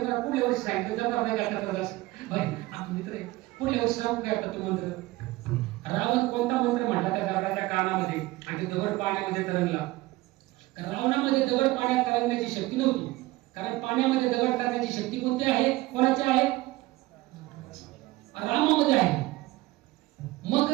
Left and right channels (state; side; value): quieter; left; 19.2 dB